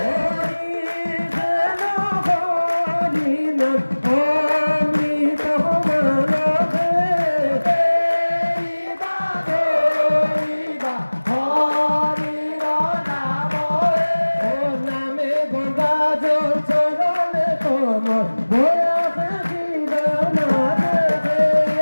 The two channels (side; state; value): both; inverted; correlation -1.00